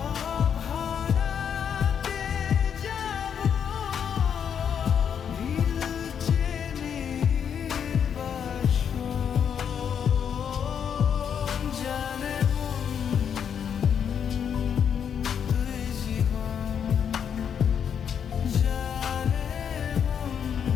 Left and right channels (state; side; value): quieter; right; 7.9 dB